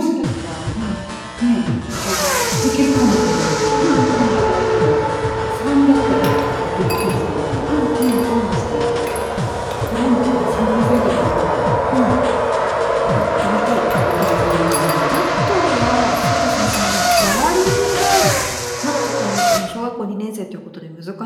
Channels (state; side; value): identical; both; correlation 1.00